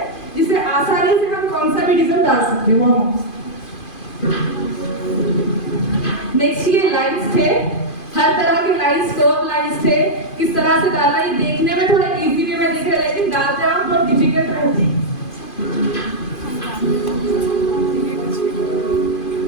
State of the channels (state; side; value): late; right; 2.5 ms